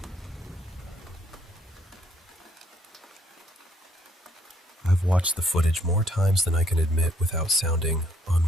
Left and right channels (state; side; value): normal; both; correlation 0.67